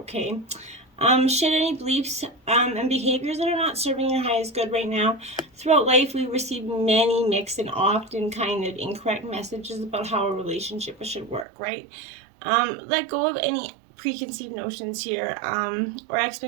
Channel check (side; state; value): left; drops out; at 11.5 s